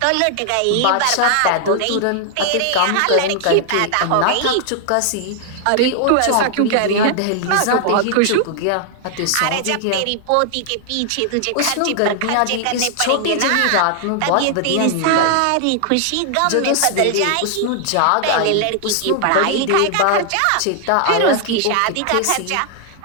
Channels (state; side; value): different; both; correlation 0.00